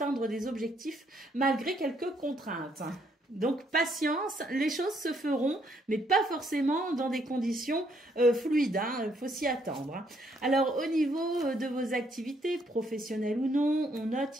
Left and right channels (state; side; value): normal; both; correlation 0.70